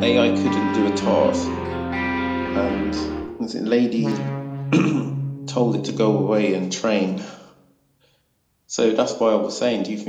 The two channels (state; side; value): identical; both; correlation 1.00